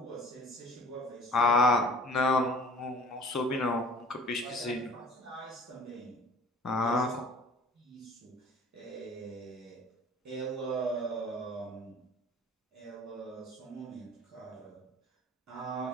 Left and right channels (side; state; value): both; normal; correlation 0.48